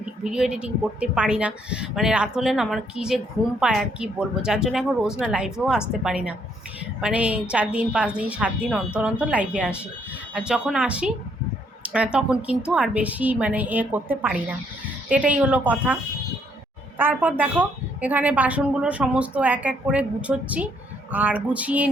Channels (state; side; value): normal; both; correlation 0.70